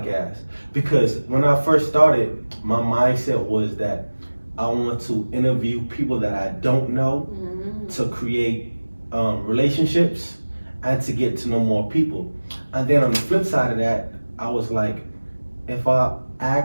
Because when I first started, my mindset was that I want to interview people that I don't know to create relationships and to get to know more people. And then on the flip side of that, I was like, if I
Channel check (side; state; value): both; inverted; correlation -1.00